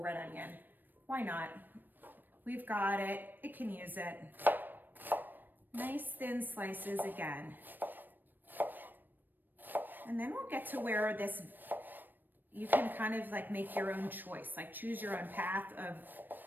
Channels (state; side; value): late; left; 0.092 ms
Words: red onion. Why not? We've got it, it can use it. Nice thin slices again. And then we'll get to where this, you can kind of like make your own choice, like choose your own path of